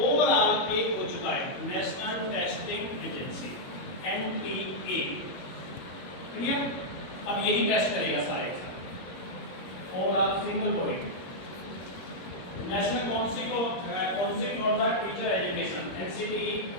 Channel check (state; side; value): late; right; 22 ms